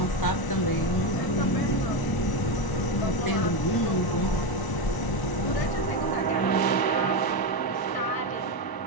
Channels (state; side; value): late; right; 1.0 ms